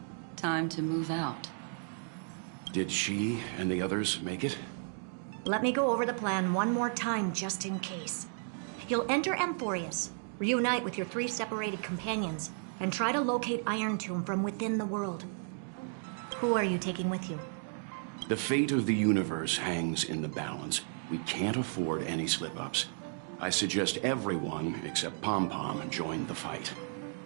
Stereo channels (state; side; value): silent; left; 55 dB below the other